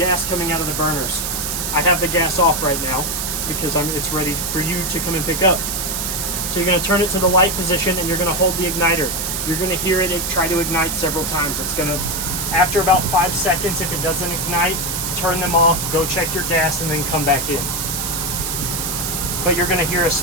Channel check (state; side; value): noise; right; hiss, 2 dB below the sound